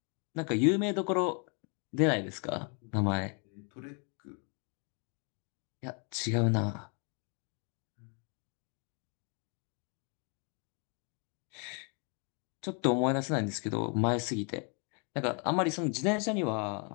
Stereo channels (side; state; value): right; quieter; 38.3 dB